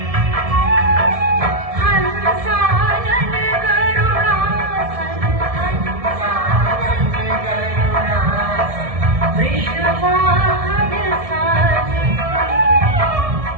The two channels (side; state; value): left; late; 1.7 ms